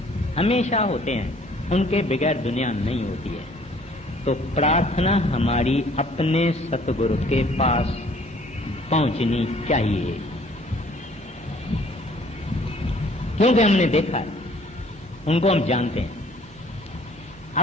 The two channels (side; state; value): both; normal; correlation 0.57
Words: हमेशा होते हैं, उनके बगैर दुनिया नहीं होती है। तो प्रार्थना हमारी अपने सतगुरु के पास पहुंचनी चाहिए, क्योंकि हमने देखा है, उनको हम जानते हैं।